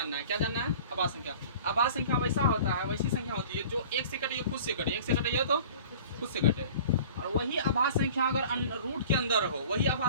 है। क्या जानना है? आभास संख्या। आभास संख्या वैसा होता है, वैसी संख्या होती है जो एक से कटे खुद से कटे, एक से कटे तो खुद से कटे। और वही आभास संख्या अगर रूट के अंदर हो, वही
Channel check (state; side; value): inverted; both; correlation -0.44